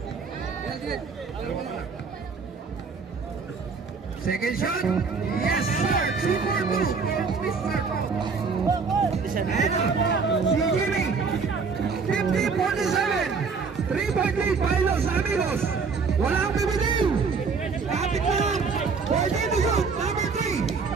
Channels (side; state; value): left; quieter; 5.1 dB